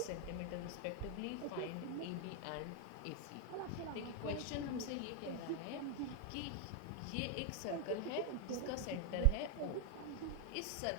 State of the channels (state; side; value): different; both; correlation 0.00